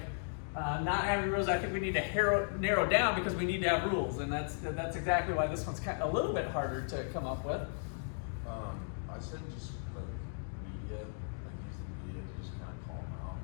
not having rules, I think we need to narrow down because we need to have rules, and that's exactly why this one's kind of a little bit harder to come up with. I said just like media, like use the media to just kind of call them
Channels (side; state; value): right; silent; digital silence